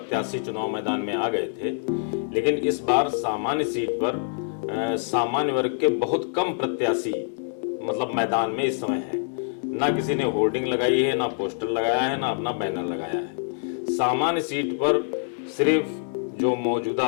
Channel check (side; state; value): right; silent; digital silence